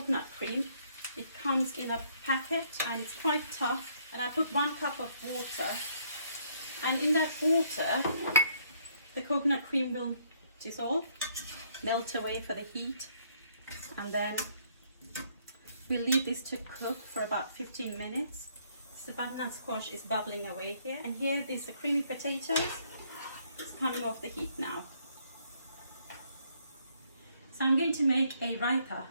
cream. It comes in a packet and it's quite tough. And I put 1 cup of water, and in that water the coconut cream will dissolve, melt away for the heat, and then we'll leave this to cook for about 15 minutes. So the butternut squash is bubbling away here, and here there's the creamy potatoes. It's coming off the heat now. So I'm going to make a raita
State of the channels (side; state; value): both; inverted; correlation -0.67